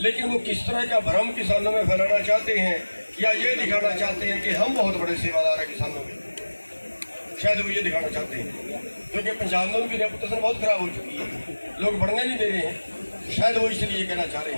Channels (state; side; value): inverted; both; correlation -1.00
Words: वो किस तरह का भ्रम किसानों में फैलाना चाहते हैं या ये दिखाना चाहते हैं कि हम बहुत बड़े सेवादार हैं किसानों के, शायद वो ये दिखाना चाहते हैं, क्योंकि पंजाब में उनकी रेपुटेशन बहुत खराब हो चुकी है, लोग बढ़ने नहीं दे रहे हैं, शायद वो इसलिए ये कहना चाह रहे